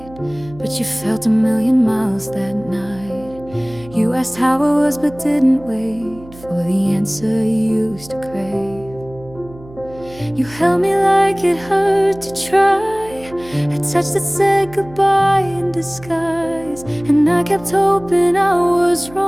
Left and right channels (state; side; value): noise; right; hum, 20 dB below the sound